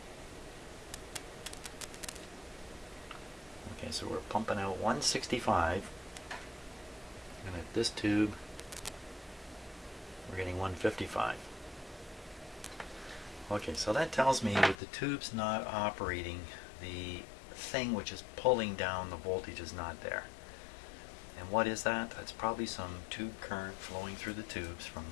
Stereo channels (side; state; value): right; drops out; at 14.8 s